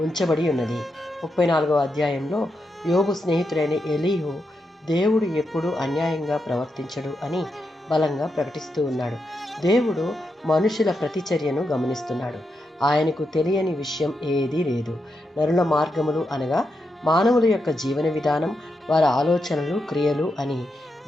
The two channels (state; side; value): normal; both; correlation 0.85